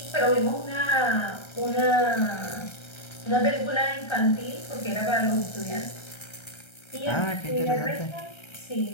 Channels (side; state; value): right; late; 1.3 ms